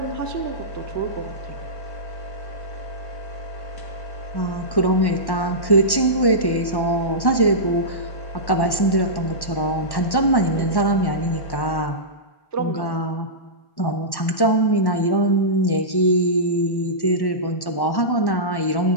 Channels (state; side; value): late; right; 1.1 ms